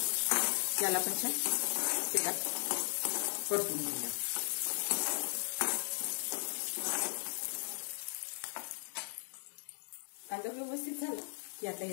याला पण छान तेलात परतून घेऊया। कांदा व्यवस्थित झाला की आता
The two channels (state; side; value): silent; right; 53 dB below the other